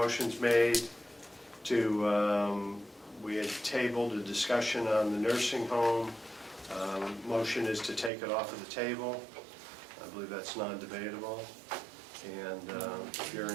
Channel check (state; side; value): drops out; left; at 8.1 s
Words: made to, we had tabled a discussion on the nursing home. Motion is to take it off of the table. I believe that's non-debatable. And if you're